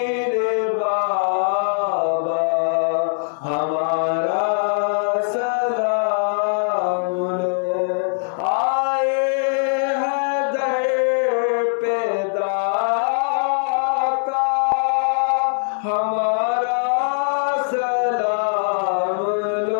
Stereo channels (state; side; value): silent; right; digital silence